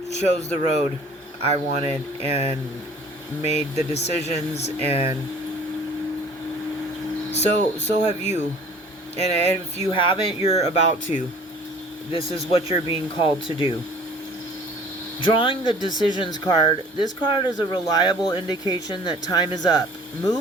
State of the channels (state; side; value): normal; both; correlation 0.49